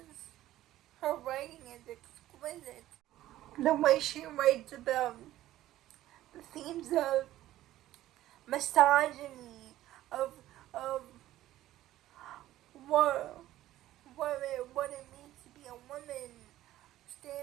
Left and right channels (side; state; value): left; quieter; 14.4 dB